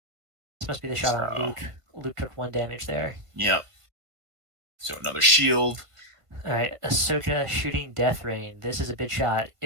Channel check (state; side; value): late; left; 1.5 ms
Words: this must be the shot on So Luke. Luke took 1 damage there. yep. So another shield. All right, Ahsoka shooting Death Rain. This is a big shot.